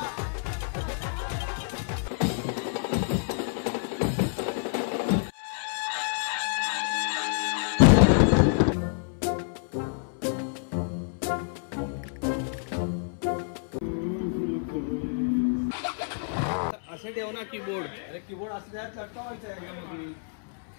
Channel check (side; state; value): right; silent; 59 dB below the other